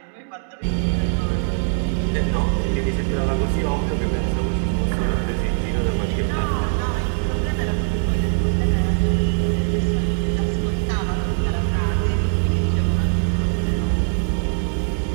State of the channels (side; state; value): left; silent; digital silence